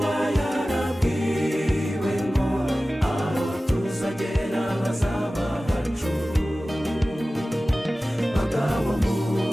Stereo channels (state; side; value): normal; both; correlation 0.96